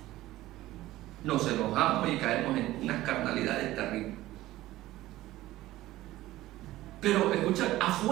Nos enojamos y caemos en unas carnalidades terribles. Pero escucha,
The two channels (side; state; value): left; quieter; 16.2 dB